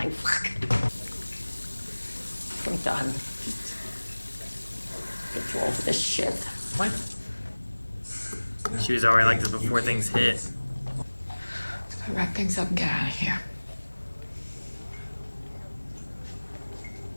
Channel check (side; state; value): both; inverted; correlation -1.00